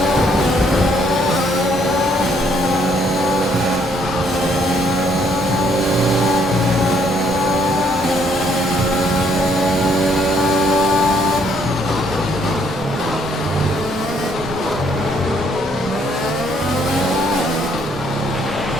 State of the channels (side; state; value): both; normal; correlation 0.67